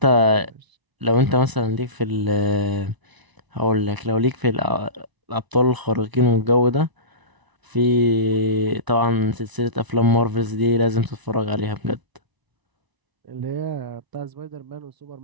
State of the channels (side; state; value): left; late; 1.0 ms